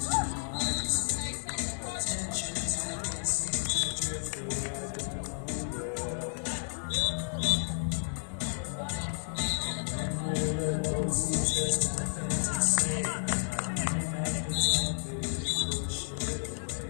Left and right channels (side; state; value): right; silent; 57 dB below the other